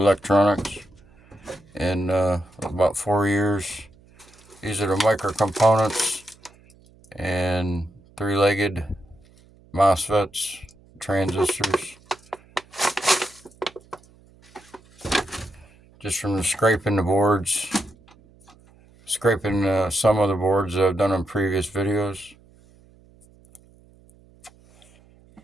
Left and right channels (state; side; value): noise; right; hum, 28 dB below the sound